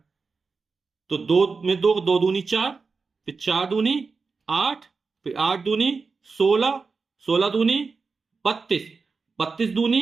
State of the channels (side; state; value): left; quieter; 4.6 dB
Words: तो दो में दो, दो दूनी 4, फिर 4 दूनी 8, फिर 8 दूनी 16, 16 दूनी 32, 32 दूनी